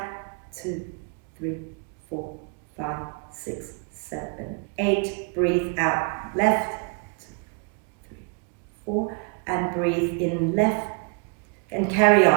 2, 3, 4, 5, 6, 7, 8. Breathe out left. 2, 3, 4. And breathe in left. And carry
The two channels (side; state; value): left; quieter; 37.8 dB